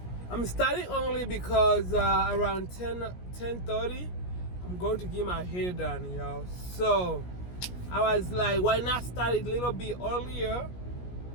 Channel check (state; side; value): late; right; 17 ms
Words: I'm starting early because around 10:30 I'm going to get my hair done, y'all. So I was like, why not start it a little bit earlier,